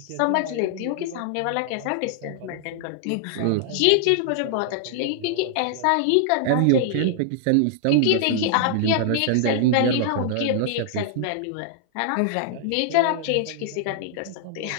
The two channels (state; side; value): different; both; correlation -0.01